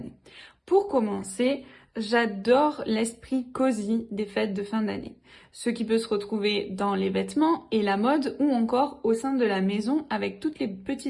Pour commencer, j'adore l'esprit cosy des fêtes de fin d'année. Ce qui peut se retrouver dans les vêtements et la mode ou encore au sein de la maison avec toutes les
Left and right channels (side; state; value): both; identical; correlation 1.00